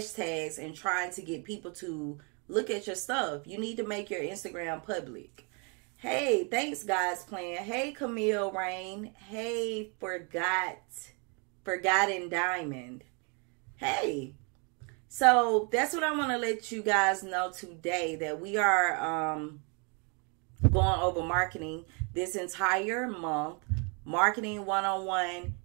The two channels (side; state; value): left; quieter; 35.0 dB